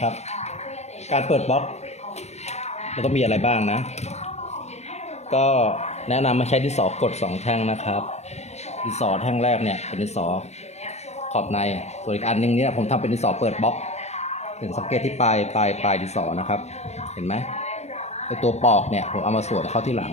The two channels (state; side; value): late; right; 0.32 ms